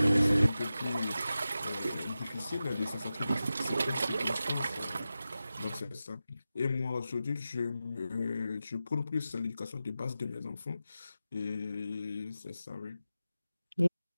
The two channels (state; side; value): inverted; both; correlation -0.93